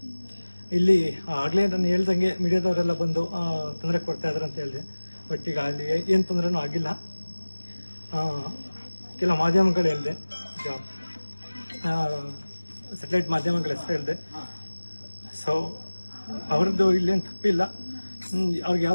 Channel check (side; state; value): both; inverted; correlation -1.00